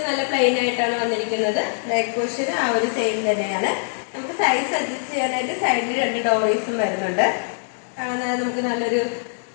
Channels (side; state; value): right; silent; 64 dB below the other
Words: നല്ല പ്ലെയിൻ ആയിട്ടാണ് വന്നിരിക്കുന്നത്. ബാക്ക് പോർഷൻ ആ ഒരു സെയിം തന്നെയാണ്. നമുക്ക് സൈസ് അഡ്ജസ്റ്റ് ചെയ്യാനായിട്ട് സൈഡിൽ 2 ഡോറീസും വരുന്നുണ്ട്. നമുക്ക് നല്ലൊരു